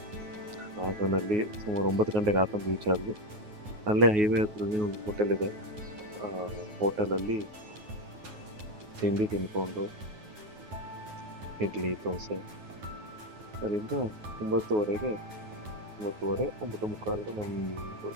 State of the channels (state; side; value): late; left; 9.5 ms